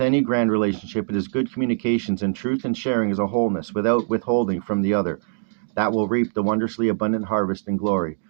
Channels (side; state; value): left; silent; digital silence